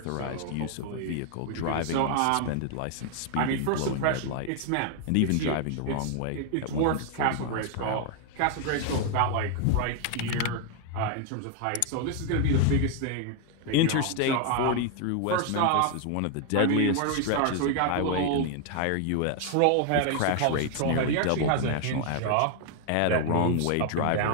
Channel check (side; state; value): both; different; correlation 0.00